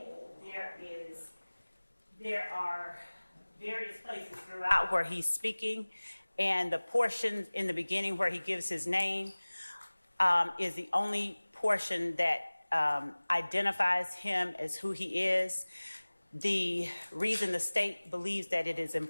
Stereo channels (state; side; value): inverted; both; correlation -1.00